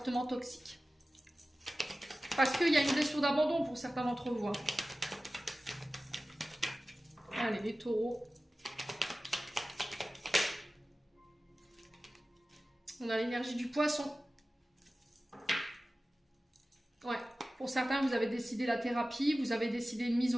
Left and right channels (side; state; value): both; normal; correlation 0.96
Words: toxiques. Parce qu'il y a une blessure d'abandon pour certains d'entre vous. Hein. Allez, les taureaux. On a l'énergie du poisson. Ouais, pour certains, vous avez décidé la thérapie, vous avez décidé une mise